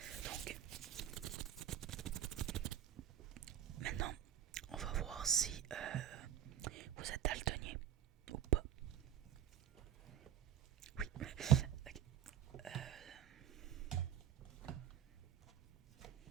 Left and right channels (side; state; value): left; quieter; 10.2 dB